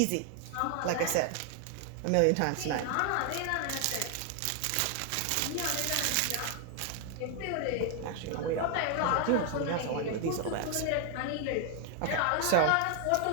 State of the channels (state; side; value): different; both; correlation 0.00